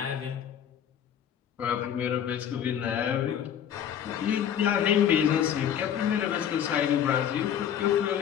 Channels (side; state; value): right; quieter; 9.4 dB